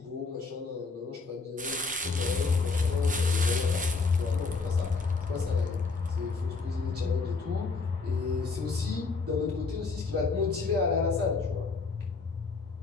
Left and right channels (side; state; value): right; quieter; 4.2 dB